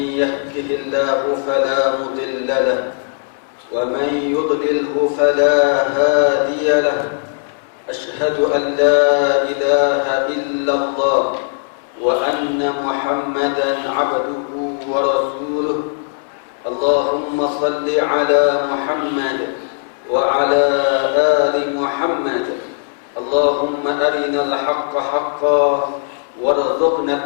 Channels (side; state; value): right; silent; digital silence